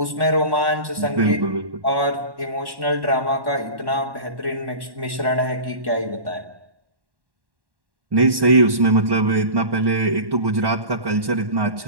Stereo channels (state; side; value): late; left; 1.1 ms